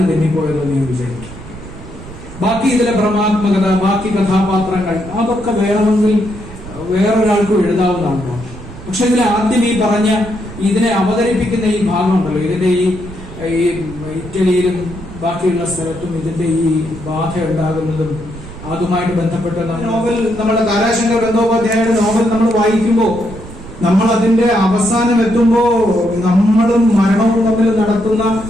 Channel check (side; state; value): right; noise; rumble, 14 dB below the sound